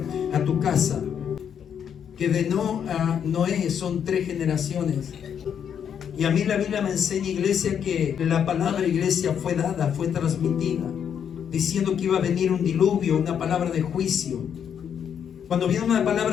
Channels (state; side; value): quieter; right; 8.2 dB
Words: a tu casa. Que de Noé son 3 generaciones. Y a mí la Biblia me enseña, iglesia, que la palabra, iglesia, fue dada, fue transmitida, diciendo que iba a venir un diluvio, una palabra de juicio. Cuando viene una